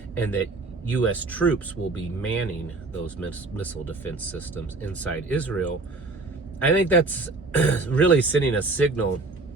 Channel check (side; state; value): left; quieter; 3.4 dB